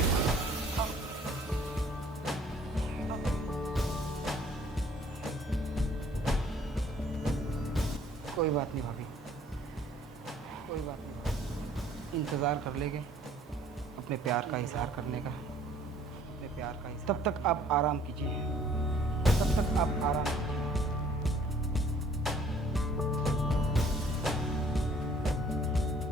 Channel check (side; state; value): both; normal; correlation 0.57